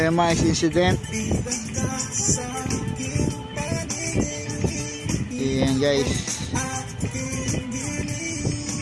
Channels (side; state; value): both; identical; correlation 1.00